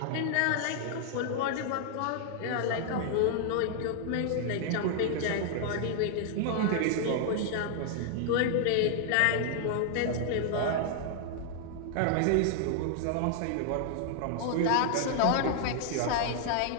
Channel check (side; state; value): both; different; correlation 0.00